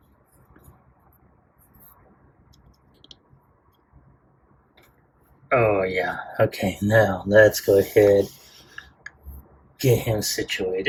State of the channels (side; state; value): both; identical; correlation 1.00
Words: oh yeah, okay, now let's go ahead, get him